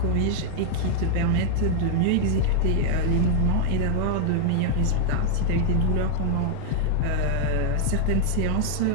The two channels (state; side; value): different; both; correlation -0.01